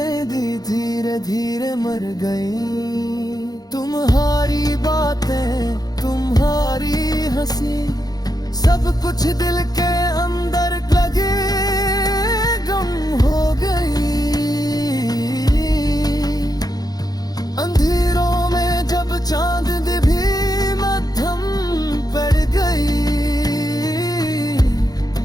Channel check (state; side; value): late; right; 0.19 ms